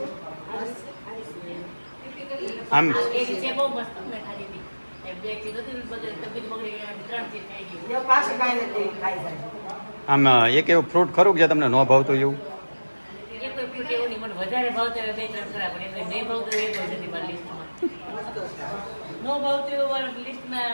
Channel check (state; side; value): inverted; both; correlation -1.00